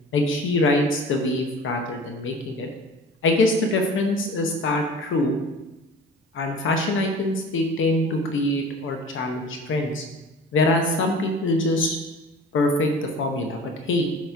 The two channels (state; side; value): normal; both; correlation 0.42